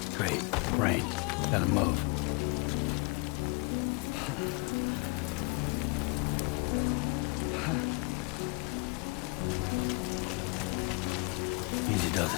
Great. Rain. Gotta move. Easy does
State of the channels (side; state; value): right; quieter; 29.0 dB